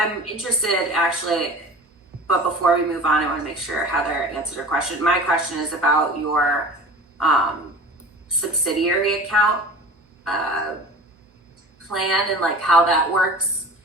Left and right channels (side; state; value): both; normal; correlation 0.38